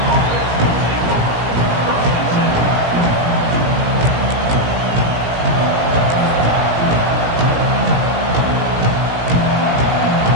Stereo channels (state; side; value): late; left; 17 ms